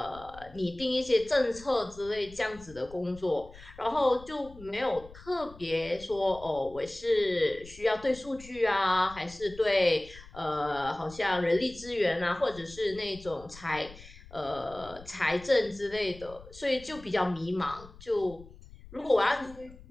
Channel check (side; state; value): left; noise; rumble, 19 dB below the sound